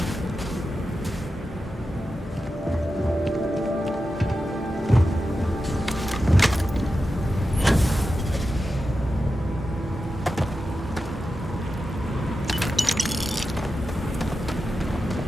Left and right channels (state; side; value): normal; both; correlation 0.91